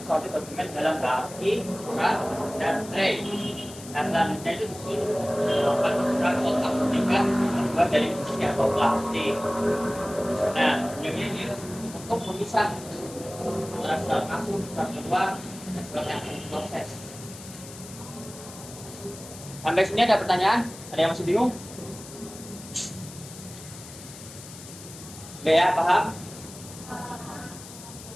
dokumen dalam baki, surat, dan tray. Dan selanjutnya itu melakukan surat kotak tingkat terbuat dari besi atau plastik. Nah, ini untuk memisah antara surat masuk, surat keluar, dan surat yang diproses. Sampai sini ada pertanyaan? Ada yang masih bingung? Oke ya, paham?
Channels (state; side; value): noise; left; hiss, 15 dB below the sound